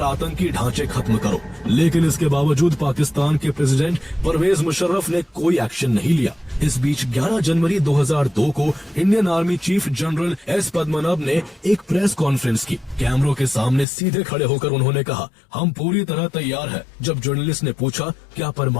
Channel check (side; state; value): right; drops out; at 13.9 s